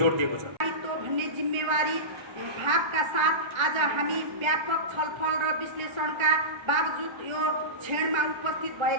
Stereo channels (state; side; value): late; left; 1.3 ms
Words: दिएको छ। भन्ने जिम्मेवारी भावका साथ आज हामी व्यापक छलफल र विश्लेषणका बावजुद यो क्षणमा उपस्थित